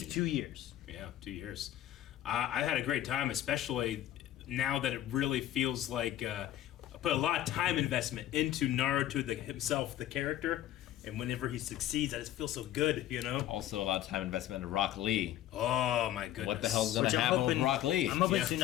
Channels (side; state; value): right; quieter; 12.8 dB